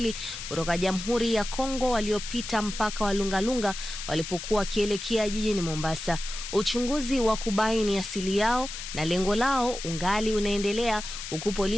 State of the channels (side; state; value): left; noise; hiss, 8 dB below the sound